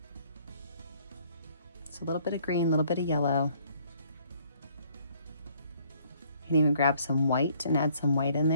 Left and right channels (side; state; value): both; inverted; correlation -0.62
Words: So a little bit of green, a little bit of yellow. You can even grab some white and add some white in